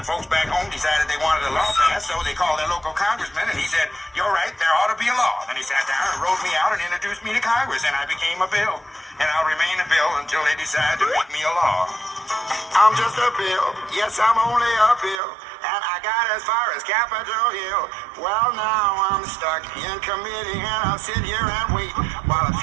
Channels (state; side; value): drops out; left; at 15.2 s